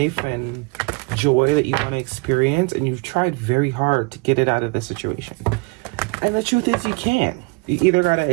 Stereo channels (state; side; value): quieter; left; 29.9 dB